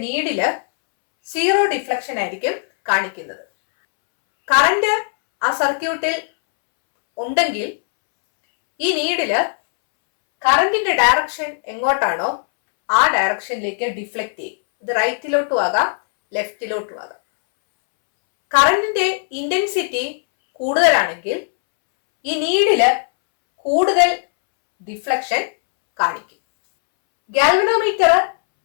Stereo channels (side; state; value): right; silent; 67 dB below the other